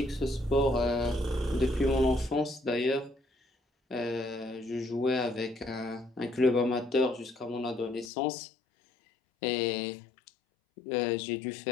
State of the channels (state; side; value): drops out; right; at 8.1 s